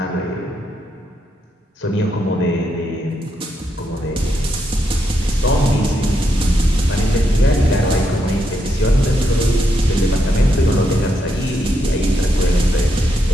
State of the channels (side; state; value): both; normal; correlation 0.80